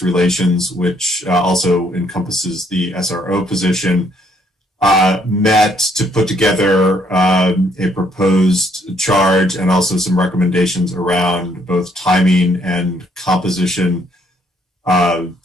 relations, which also encompasses the SRO position, met to put together a proposed charge and also some recommendations around both timing and composition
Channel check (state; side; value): normal; both; correlation 0.68